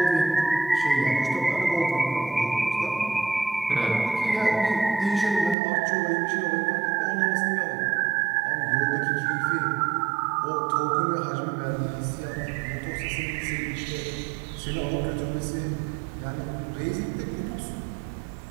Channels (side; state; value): left; drops out; at 5.6 s